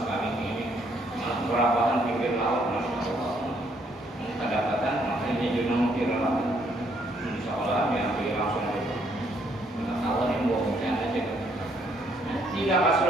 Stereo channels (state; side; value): normal; both; correlation 0.69